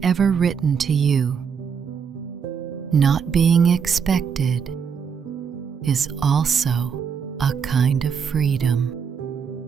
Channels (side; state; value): left; quieter; 6.7 dB